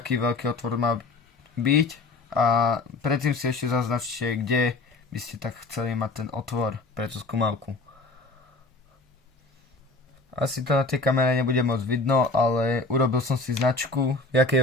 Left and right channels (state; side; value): quieter; right; 3.4 dB